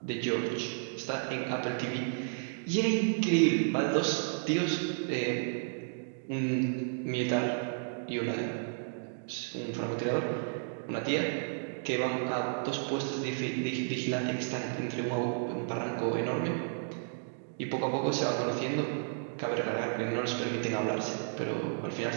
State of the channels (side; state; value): left; silent; digital silence